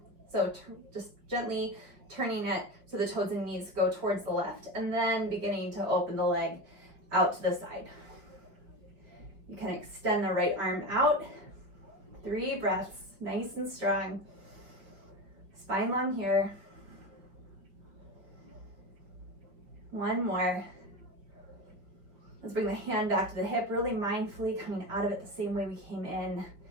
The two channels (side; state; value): left; late; 4.9 ms